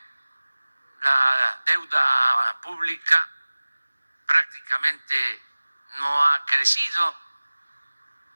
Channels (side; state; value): both; inverted; correlation -1.00